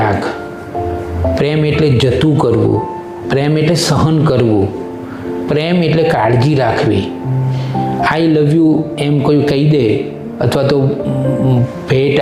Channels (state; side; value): identical; both; correlation 1.00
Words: પ્રેમ એટલે જતું કરવું, પ્રેમ એટલે સહન કરવું, પ્રેમ એટલે કાળજી રાખવી. આઈ લવ યુ એમ કોઈ કહી દે અથવા તો ભેટ